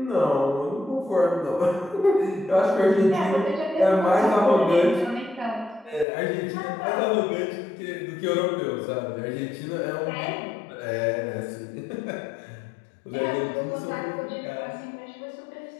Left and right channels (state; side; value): drops out; right; at 6.1 s